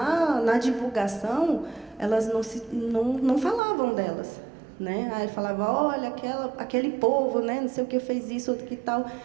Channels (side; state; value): left; drops out; at 3.6 s